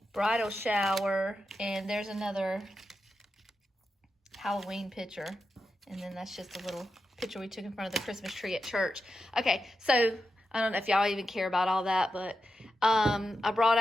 Bridal shower. And there's another Halloween picture. And then that's just a little picture we took in front of the Christmas tree at church. Okay, so I don't know if y'all even care about all that, but I brought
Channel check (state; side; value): normal; both; correlation 0.89